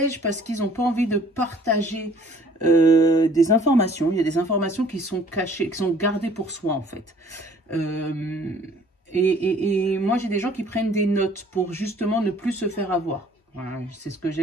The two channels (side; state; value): both; normal; correlation 0.55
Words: parce qu'ils n'ont pas envie de partager des informations. Il y a des informations qui sont cachées, qui sont gardées pour soi en fait. Et moi j'ai des gens qui prennent des notes pour justement ne plus se faire avoir. Voilà, c'est ce que